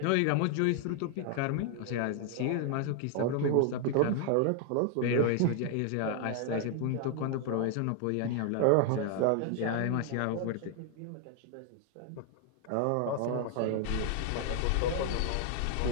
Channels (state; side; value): different; both; correlation 0.00